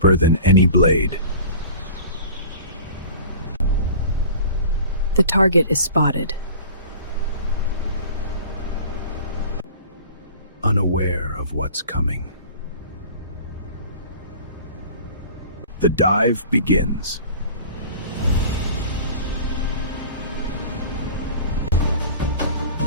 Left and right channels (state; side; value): inverted; both; correlation -0.42